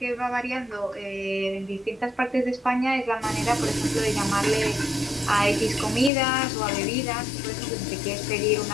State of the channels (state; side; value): drops out; right; at 6.1 s